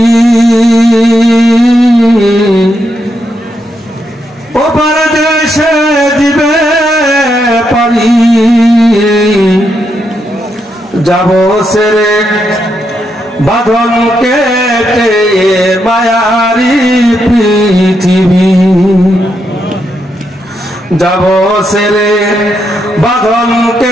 ওপার দেশে দিবে পারি যাব সেরে বাঁধন কেটে মায়ারি পৃথিবী যাব সেরে বাঁধন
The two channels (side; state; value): both; normal; correlation 0.81